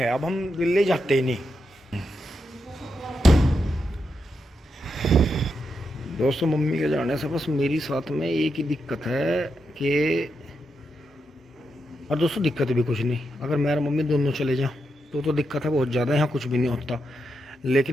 अब हम दिल्ली जाते ही नहीं। दोस्तों मम्मी के जाने से बस मेरी साथ में एक ही दिक्कत है कि, और दोस्तों दिक्कत भी कुछ नहीं, अगर मैं और मम्मी दोनों चले जाओ तो दिक्कत है बहुत ज़्यादा, यहाँ कुछ भी नहीं होता।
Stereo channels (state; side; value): normal; both; correlation 0.84